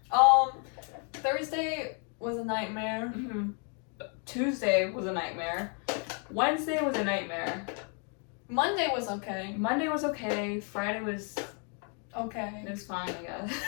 Thursday was a nightmare. Mm-hmm. Tuesday was a nightmare. Wednesday was a nightmare. Monday was okay. Monday was okay. Friday was Okay. it was fine, I guess.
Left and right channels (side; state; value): right; quieter; 39.8 dB